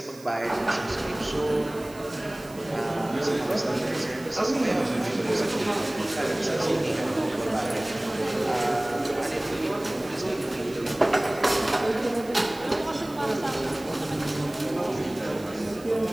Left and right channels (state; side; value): noise; right; hiss, 21 dB below the sound